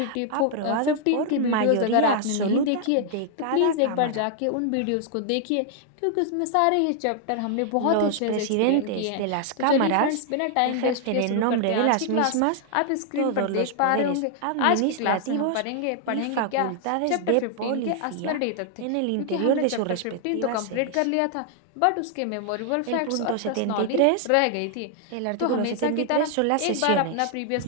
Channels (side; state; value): both; different; correlation 0.00